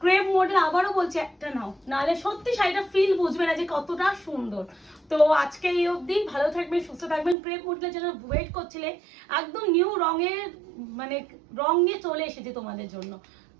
Crepe model আবারও বলছি একটা নাও, নাহলে সত্যি শাড়িটা ফিল বুঝবে না যে কতটা সুন্দর। তো আজকে এই অবধি, ভালো থাকবেন, সুস্থ থাকবেন। ক্রেপ মডেলের জন্য ওয়েট করছিলে, একদম নিউ রঙের মানে রং নিয়ে চলে এসেছে তোমাদের জন্য,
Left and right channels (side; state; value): left; drops out; at 7.4 s